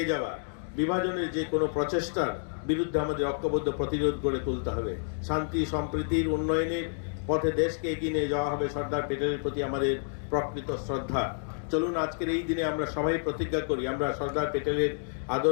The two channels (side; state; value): right; silent; digital silence